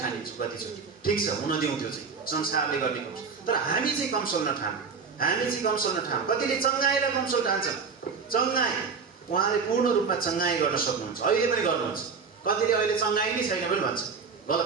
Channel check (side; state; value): left; quieter; 5.4 dB